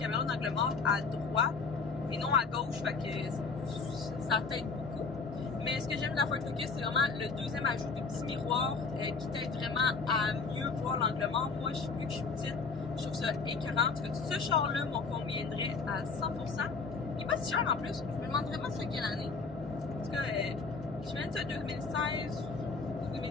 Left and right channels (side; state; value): right; quieter; 4.6 dB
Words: d'angle mort à droite et non à gauche, fait que ça t'aide beaucoup. Mais ce que j'aime de la Ford Focus, c'est vraiment le deuxième ajout de petit miroir qui t'aide vraiment à mieux voir l'angle mort. Moi, vu que je suis petite, je trouve ça écœurant. En tout cas, ce char-là m'en conviendrait à 100%. Il est pas si cher en plus. Je me demande vraiment c'est quelle année. En tout cas, je me dis 2016,